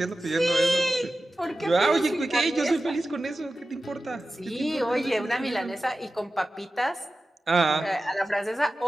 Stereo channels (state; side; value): normal; both; correlation 0.94